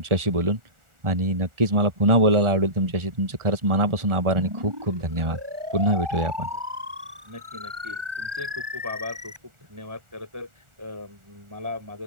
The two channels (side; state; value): left; late; 1.4 ms